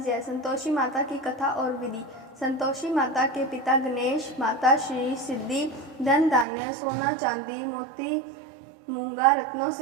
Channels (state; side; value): drops out; left; at 6.5 s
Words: संतोषी माता की कथा और विधि। संतोषी माता के पिता गणेश, माता श्री सिद्धि, धन धान्य सोना चांदी मोती मूंगा रत्नों